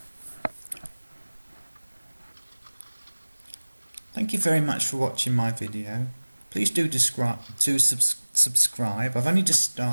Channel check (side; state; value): both; inverted; correlation -1.00